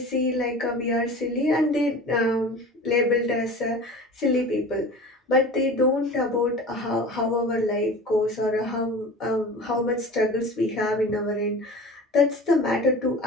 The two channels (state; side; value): normal; both; correlation 0.37